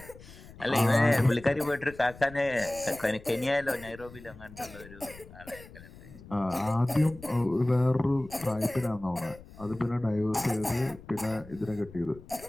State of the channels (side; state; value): left; noise; rumble, 19 dB below the sound